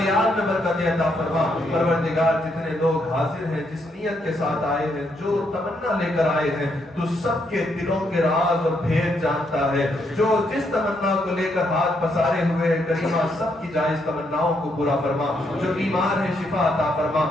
میں برکت عطا فرما۔ پروردگار جتنے لوگ حاضر ہیں، جس نیت کے ساتھ آئے ہیں، جو تمنا لے کر آئے ہیں، تو سب کے دلوں کے راز اور بھید جانتا جانتا ہے. جو جس تمنا کو لے کر ہاتھ پسارے ہوئے ہیں کریمہ سب کی جائز تمناؤں کو پورا فرما. جو بیمار ہیں شفا عطا فرما.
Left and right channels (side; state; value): both; normal; correlation 0.76